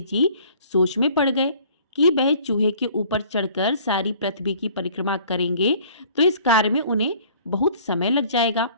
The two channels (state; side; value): inverted; both; correlation -0.53